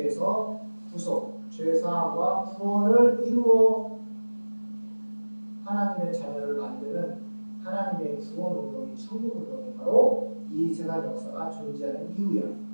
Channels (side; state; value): both; inverted; correlation -1.00